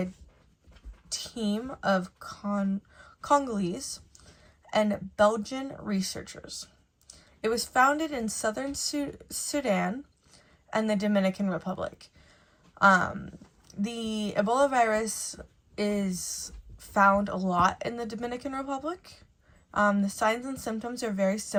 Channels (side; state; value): both; identical; correlation 1.00